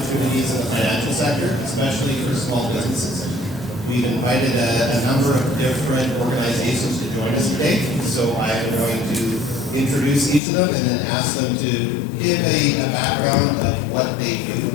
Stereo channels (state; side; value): drops out; right; at 10.4 s